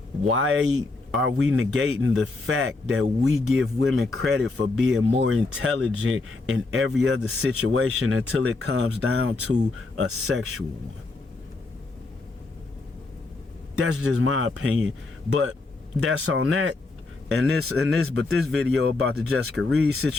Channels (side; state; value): right; quieter; 3.5 dB